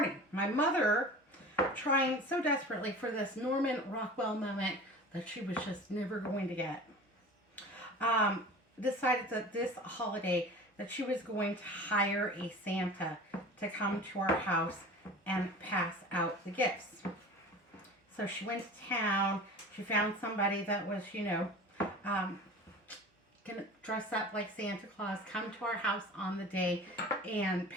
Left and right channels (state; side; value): normal; both; correlation 0.38